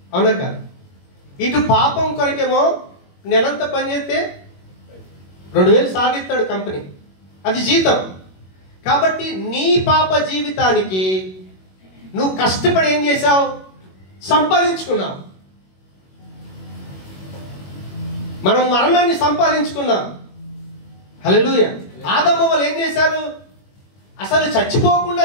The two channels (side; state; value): right; late; 21 ms